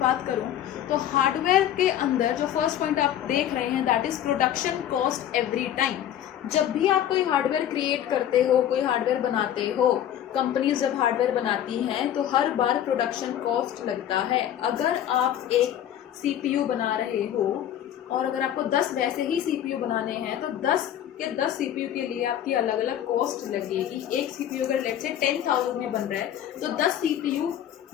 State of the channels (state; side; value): quieter; right; 10.9 dB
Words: बात करूँ तो हार्डवेयर के अंदर जो फर्स्ट पॉइंट आप देख रहे हैं that is production cost every time. जब भी आप कोई हार्डवेयर क्रिएट करते हो, कोई हार्डवेयर बनाते हो, कंपनीज जब हार्डवेयर बनाती हैं तो हर बार प्रोडक्शन कॉस्ट लगता है। अगर आप एक CPU बना रहे हो और अगर आपको 10 वैसे ही CPU बनाने हैं तो 10 के 10 CPU के लिए आपकी अलग अलग कॉस्ट लगेगी। एक CPU अगर लेट से 10,000 में बन रहा है तो 10 CPU